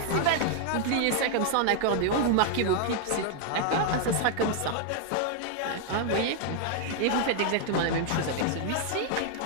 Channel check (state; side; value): different; both; correlation 0.00